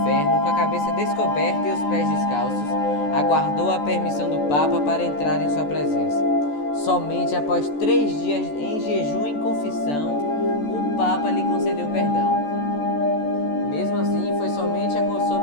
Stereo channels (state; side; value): late; right; 14 ms